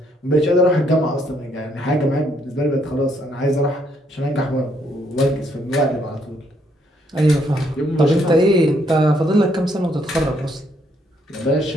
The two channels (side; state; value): both; normal; correlation 0.71